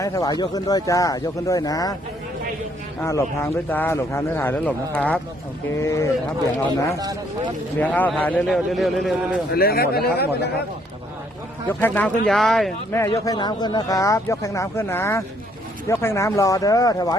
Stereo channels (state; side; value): normal; both; correlation 0.67